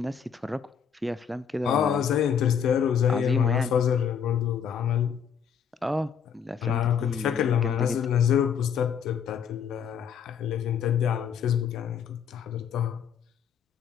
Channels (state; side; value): quieter; right; 7.6 dB